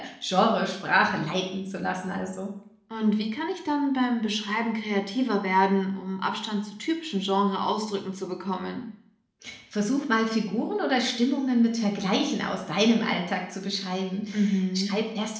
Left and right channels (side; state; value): both; identical; correlation 1.00